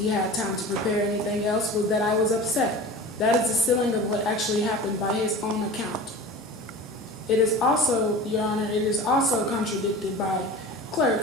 had time to prepare anything else was that I was upset. That is the ceiling of what actually happened by his own account. It is also, Your Honor, it is also contradicted by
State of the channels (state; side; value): normal; both; correlation 0.36